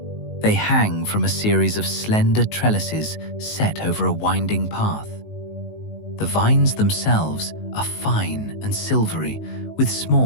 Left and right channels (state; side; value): late; right; 19 ms